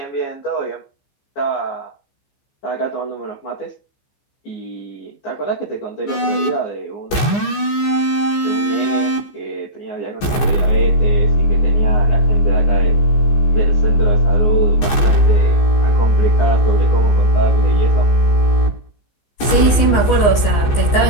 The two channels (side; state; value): right; late; 15 ms